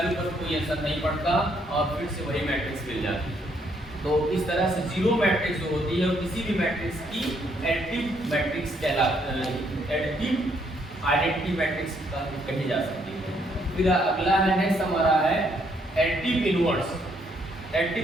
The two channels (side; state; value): both; normal; correlation 0.71